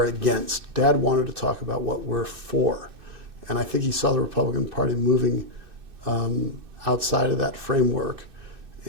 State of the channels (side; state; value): left; late; 2.6 ms